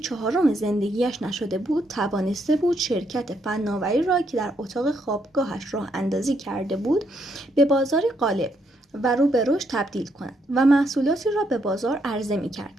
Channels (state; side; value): normal; both; correlation 0.75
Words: زندگیش نشده بود، توانسته بود شرکت فناوری را که در اتاق خوابگاهش راه اندازی کرده بود به بازاری غالب و رو به رشد تبدیل کند و محصولاتی را به بازار عرضه می